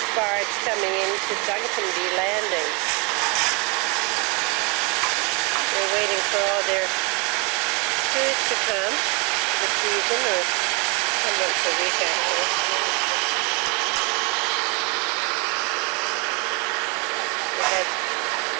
barge coming into Duncanby Landing. They're waiting for all their food to come for the season, or come once a week actually. We had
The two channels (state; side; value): quieter; left; 31.6 dB